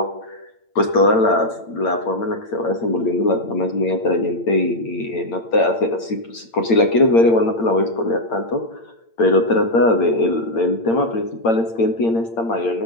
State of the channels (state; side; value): late; right; 8.8 ms